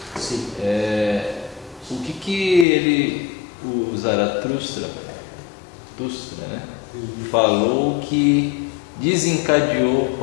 Sim. O que o Zaratustra, né, falou que desencadeou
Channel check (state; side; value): drops out; right; at 2.7 s